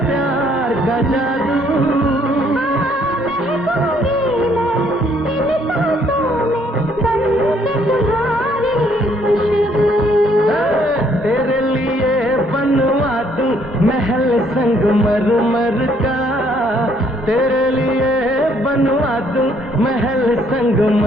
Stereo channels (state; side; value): normal; both; correlation 0.66